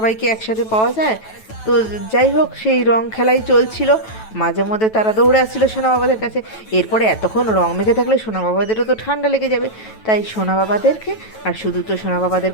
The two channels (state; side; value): late; right; 9.2 ms